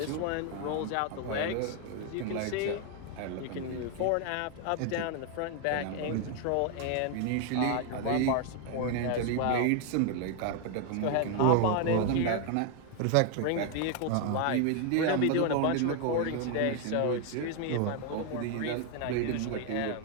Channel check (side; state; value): both; different; correlation 0.01